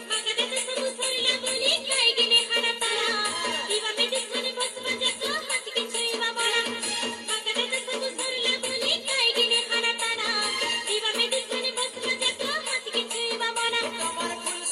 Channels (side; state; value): both; identical; correlation 1.00